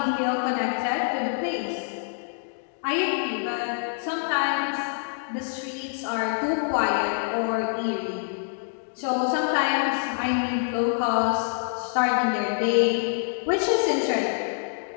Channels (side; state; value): right; silent; digital silence